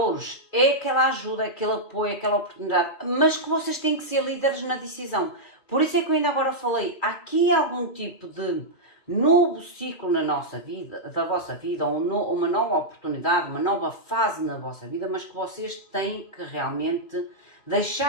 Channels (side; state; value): right; late; 2.4 ms